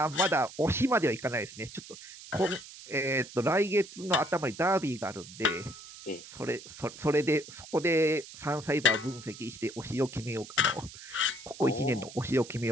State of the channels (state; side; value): noise; right; hiss, 16 dB below the sound